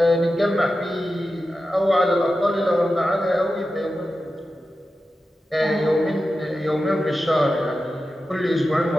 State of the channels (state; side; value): normal; both; correlation 0.92